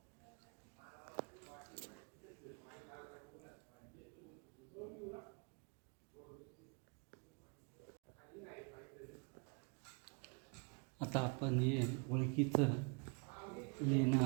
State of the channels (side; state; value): left; quieter; 35.1 dB